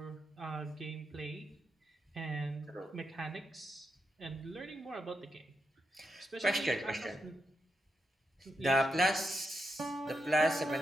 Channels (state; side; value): normal; both; correlation 0.85